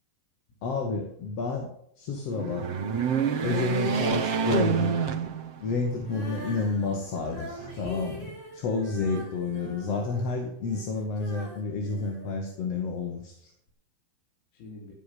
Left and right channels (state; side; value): late; right; 7.7 ms